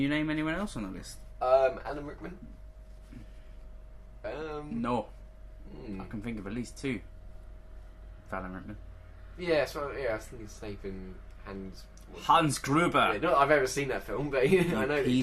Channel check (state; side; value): identical; both; correlation 1.00